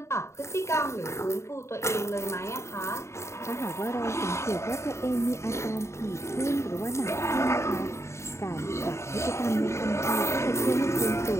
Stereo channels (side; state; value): right; late; 0.13 ms